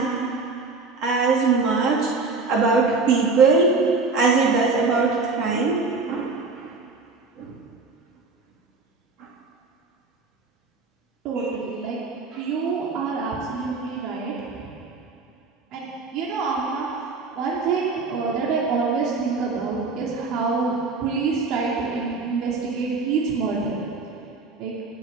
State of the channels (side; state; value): left; quieter; 4.1 dB